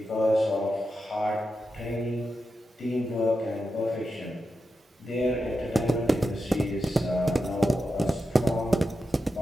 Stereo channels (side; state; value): both; normal; correlation 0.89